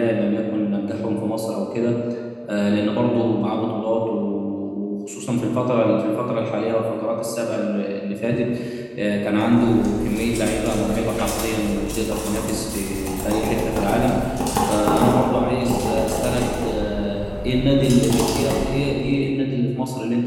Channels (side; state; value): both; identical; correlation 1.00